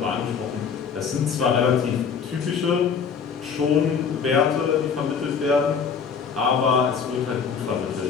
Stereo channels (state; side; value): quieter; right; 6.3 dB